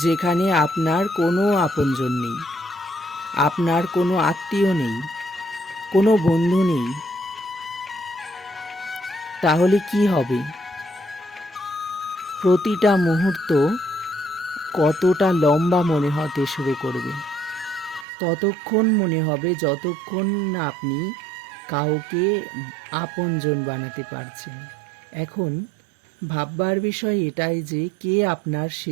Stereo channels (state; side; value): drops out; left; at 18.1 s